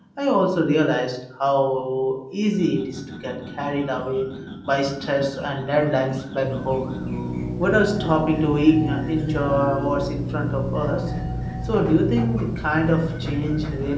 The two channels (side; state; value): both; identical; correlation 1.00